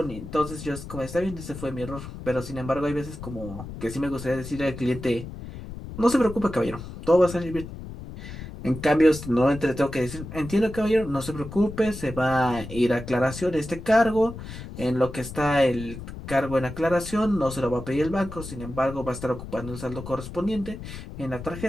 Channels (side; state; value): left; noise; rumble, 11 dB below the sound